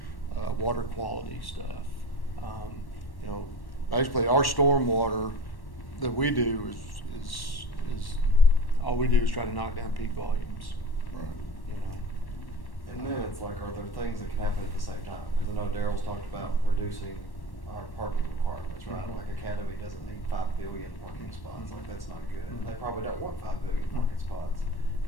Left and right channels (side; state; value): right; late; 1.1 ms